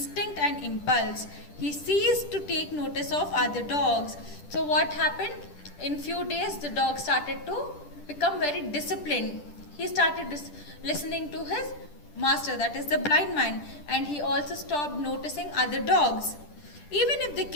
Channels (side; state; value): right; late; 10 ms